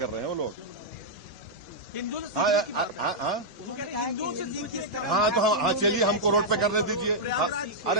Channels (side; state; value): both; normal; correlation -0.07